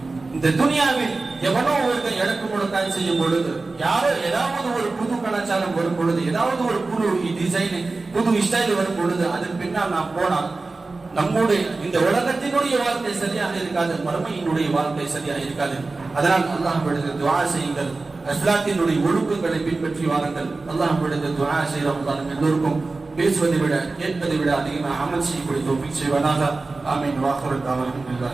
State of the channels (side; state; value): left; quieter; 3.6 dB